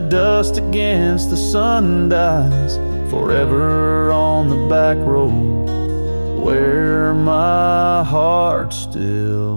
against the sun dies, forever on the back road where my heart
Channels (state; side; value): inverted; both; correlation -1.00